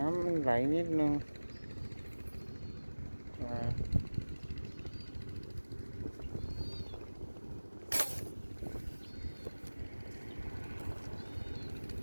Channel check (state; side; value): inverted; both; correlation -1.00